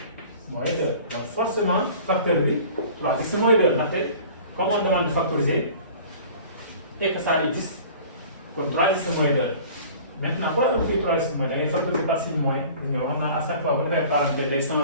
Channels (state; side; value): inverted; both; correlation -0.45